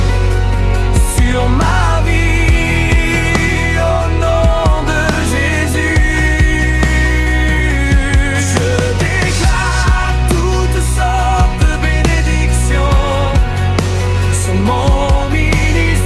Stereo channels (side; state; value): both; identical; correlation 1.00